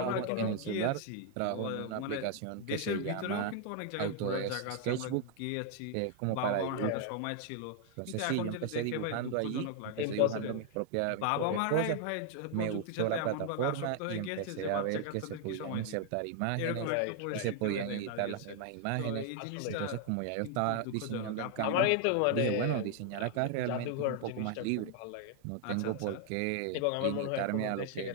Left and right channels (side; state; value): both; different; correlation 0.00